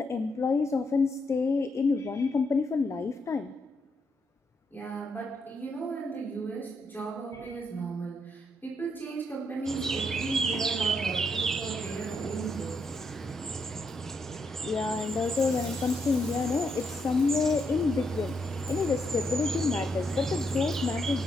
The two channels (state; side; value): normal; both; correlation 0.78